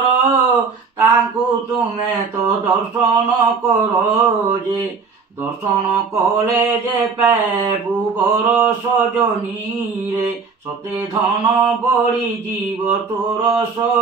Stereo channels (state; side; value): quieter; left; 5.1 dB